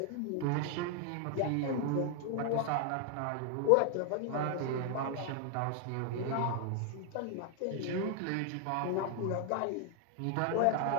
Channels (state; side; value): different; both; correlation 0.00